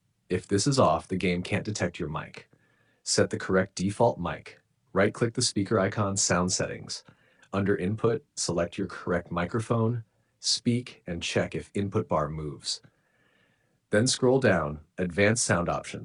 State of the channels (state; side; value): identical; both; correlation 1.00